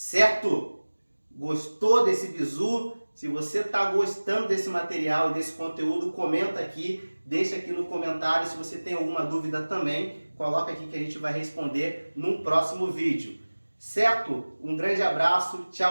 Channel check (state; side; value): inverted; both; correlation -1.00